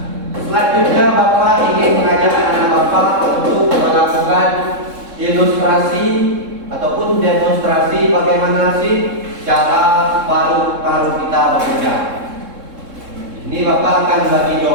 Selanjutnya Bapak ingin mengajak anak Bapak untuk melakukan ilustrasi ataupun demonstrasi bagaimana sih cara paru-paru kita bekerja. Ini Bapak akan bagi dua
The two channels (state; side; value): late; left; 3.7 ms